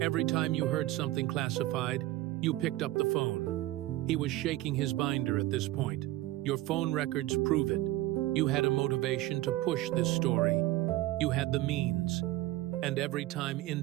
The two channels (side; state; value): left; quieter; 16.6 dB